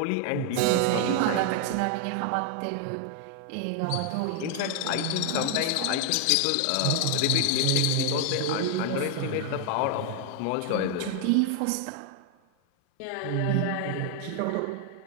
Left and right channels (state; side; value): different; both; correlation 0.00